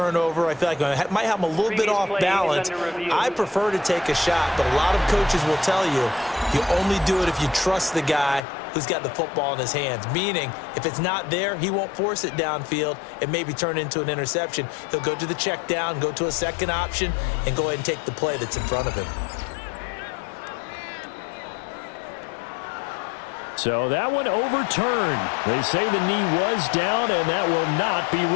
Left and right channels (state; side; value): drops out; right; at 8.4 s